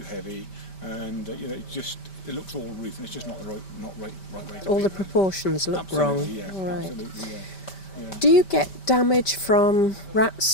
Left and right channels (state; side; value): late; right; 5.1 ms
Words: and it looks all roof, and it's just not the right way to All be, the really. proportions look wrong. Absolutely, yeah. Right. Absolutely, yeah. Yeah. Do you get damage from rats,